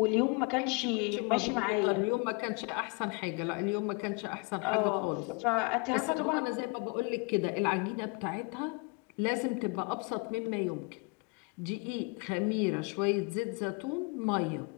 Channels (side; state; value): right; quieter; 29.4 dB